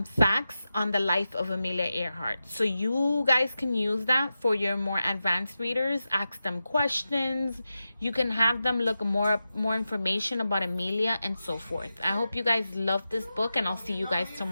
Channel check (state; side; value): inverted; both; correlation -0.92